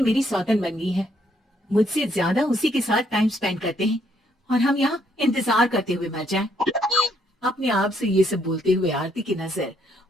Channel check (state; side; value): normal; both; correlation 0.71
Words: मेरी सौतन बन गई है। मुझसे ज्यादा उसी के साथ टाइम स्पेंड करते हैं और हम यहाँ इंतजार करते हुए मर जाएं।" अपने आप से ये सब बोलते हुए आरती की नजर